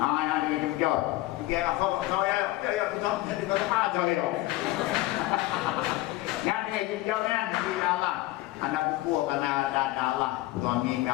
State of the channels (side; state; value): right; quieter; 17.8 dB